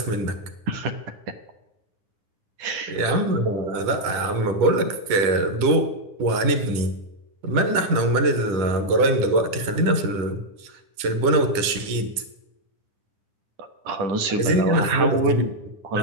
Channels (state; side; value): late; left; 9.8 ms